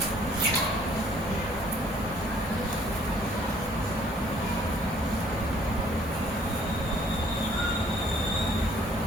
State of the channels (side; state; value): both; normal; correlation 0.60